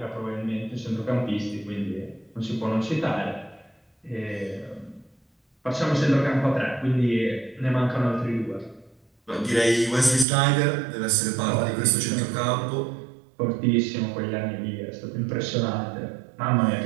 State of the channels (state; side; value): drops out; left; at 10.2 s